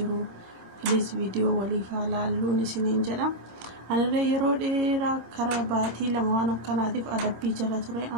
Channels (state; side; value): late; left; 27 ms